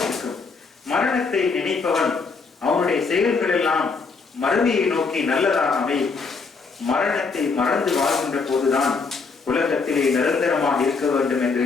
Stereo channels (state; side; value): quieter; right; 4.7 dB